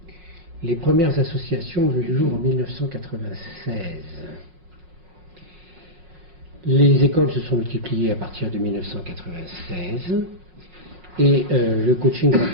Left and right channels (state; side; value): late; left; 5.5 ms